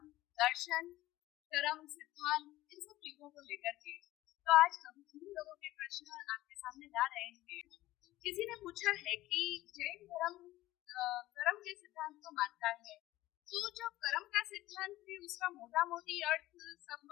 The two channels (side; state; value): right; quieter; 16.5 dB